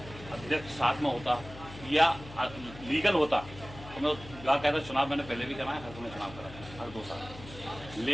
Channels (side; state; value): left; noise; hum, 16 dB below the sound